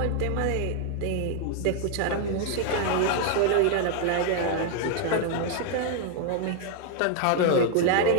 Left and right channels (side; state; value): both; different; correlation 0.00